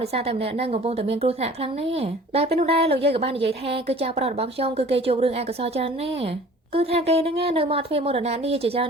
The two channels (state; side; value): normal; both; correlation 0.47